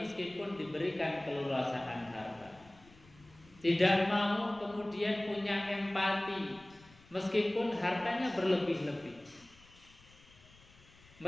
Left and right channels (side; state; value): left; noise; rumble, 25 dB below the sound